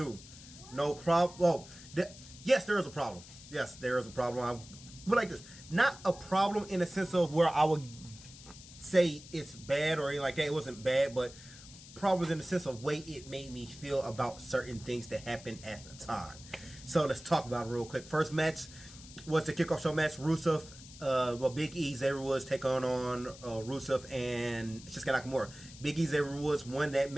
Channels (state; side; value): noise; left; hiss, 18 dB below the sound